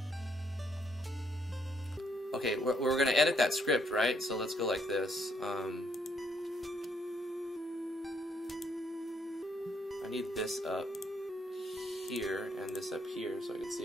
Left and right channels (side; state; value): both; normal; correlation 0.71